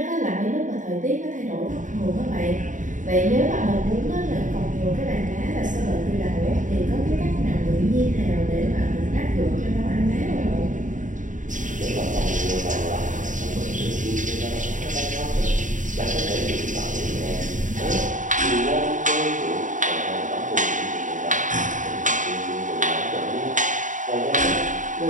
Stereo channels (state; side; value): late; left; 0.37 ms